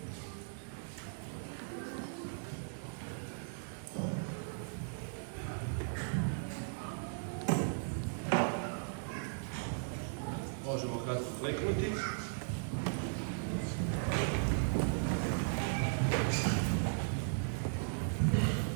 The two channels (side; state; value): left; silent; digital silence